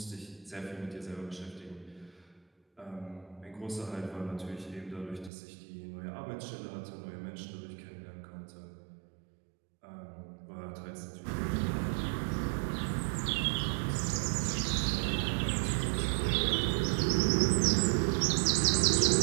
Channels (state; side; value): drops out; left; at 5.3 s